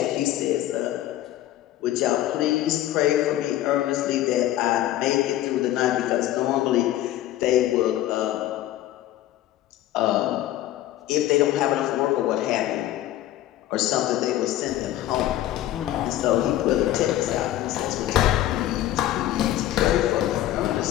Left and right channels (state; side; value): quieter; right; 13.7 dB